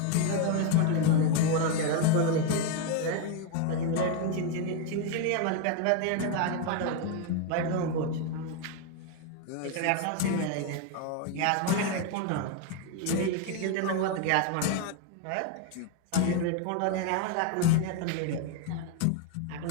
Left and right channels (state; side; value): different; both; correlation 0.01